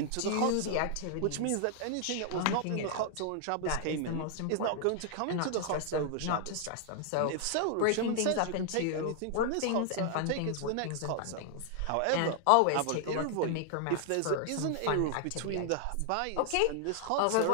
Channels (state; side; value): different; both; correlation 0.00